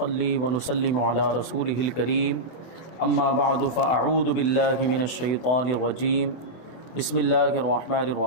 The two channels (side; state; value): right; late; 24 ms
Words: ونسلم على رسوله الكريم اما بعد فاعوذ باللہ من الشیطان الرجیم بسم اللہ الرحمن